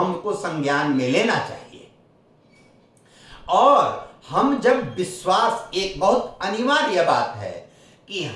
संज्ञान में लेना चाहिए। और हम जब विश्वास, एक बहुत अनिवार्य बात है कि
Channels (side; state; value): both; identical; correlation 1.00